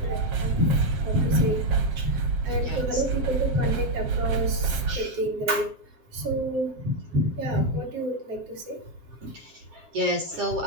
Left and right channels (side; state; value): left; late; 7.5 ms